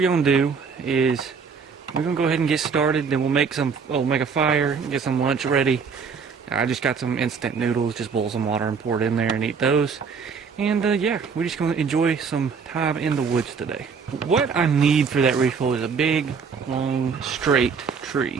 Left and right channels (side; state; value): left; quieter; 5.8 dB